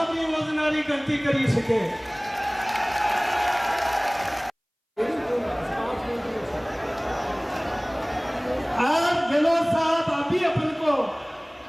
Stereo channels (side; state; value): both; identical; correlation 1.00